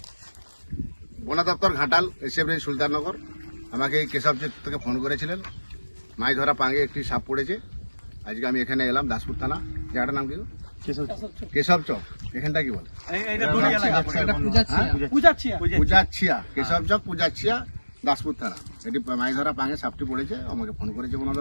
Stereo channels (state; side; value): inverted; both; correlation -1.00